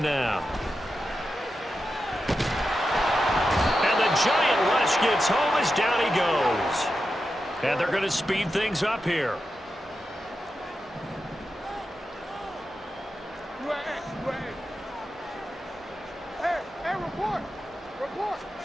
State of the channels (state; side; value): normal; both; correlation 0.90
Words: now. And the giant rush gets home as down he goes. And they're going to speed things up here. Hey, report. Report.